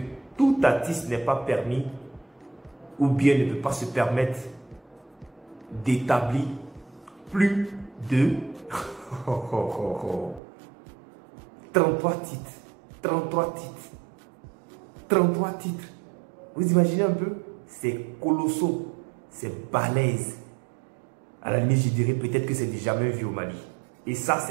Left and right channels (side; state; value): left; drops out; at 10.4 s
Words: tout artiste n'est pas permis ou bien ne peut pas se permettre d'établir plus de 33 titres. 33 titres. 33 titres. Vous imaginez un peu? C'est colossal. C'est balèze. À la limite, je dirais peut-être que c'est jamais vu au Mali. Et ça,